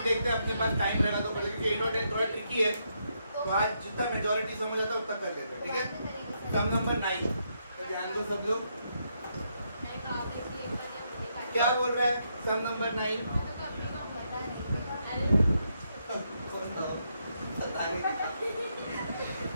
देखते हैं अपने पास टाइम रहेगा तो क्योंकि 8 और 10 थोड़ा ट्रिकी है तो आज जितना मेजॉरिटी समझ आता है उतना कर लेते हैं ठीक है सम नंबर 9 तो ध्यान दो सब लोग क्या बोल रहा है सम नंबर 9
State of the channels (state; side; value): inverted; both; correlation -0.78